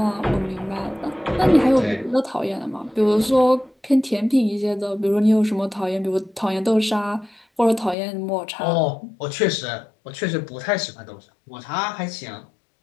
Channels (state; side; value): drops out; right; at 8.0 s